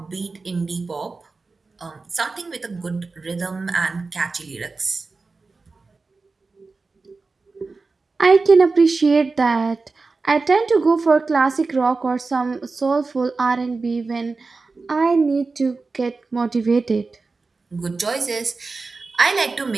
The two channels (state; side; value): quieter; left; 4.0 dB